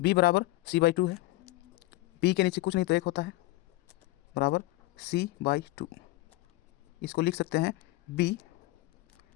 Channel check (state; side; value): quieter; right; 18.9 dB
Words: बराबर c/2 है, बी के नीचे कुछ नहीं तो 1 होता है, बराबर c/2। इसको लिख सकते हैं बी,